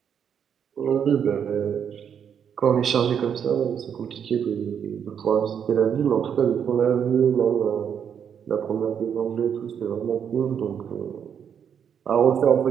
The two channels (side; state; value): left; quieter; 8.0 dB